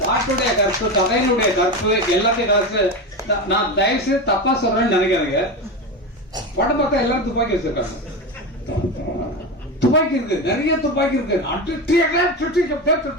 பாட்டுடைய கற்பு, கதையினுடைய கற்பு, எல்லாத்தையும் கற்பு. நான் தயவு செய்து தப்பா சொல்றேன்னு நினைக்காதீங்க. படம் பார்த்தா எல்லாரும் துப்பாக்கி வச்சிருக்காங்க. துப்பாக்கி இருக்கு, நிறைய துப்பாக்கி இருக்கு.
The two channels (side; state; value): both; normal; correlation 0.20